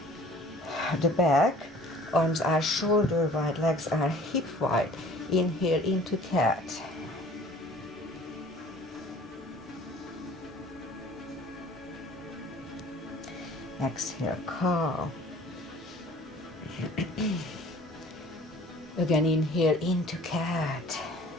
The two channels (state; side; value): normal; both; correlation 0.50